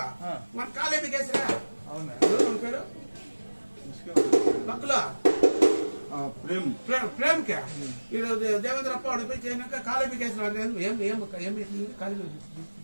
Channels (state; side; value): inverted; both; correlation -1.00